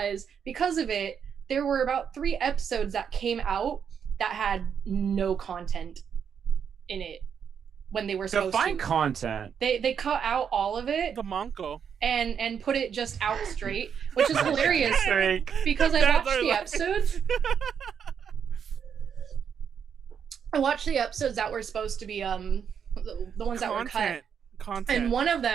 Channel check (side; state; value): left; quieter; 7.5 dB